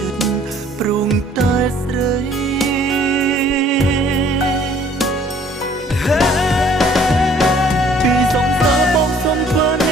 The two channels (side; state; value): both; normal; correlation 0.57